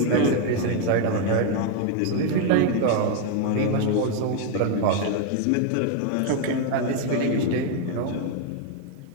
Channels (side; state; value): both; different; correlation 0.01